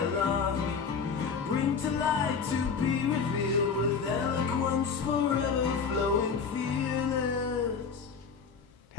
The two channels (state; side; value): quieter; right; 5.7 dB